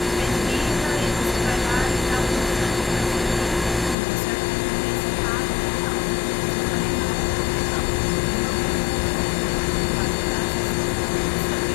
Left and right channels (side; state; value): right; drops out; at 4.0 s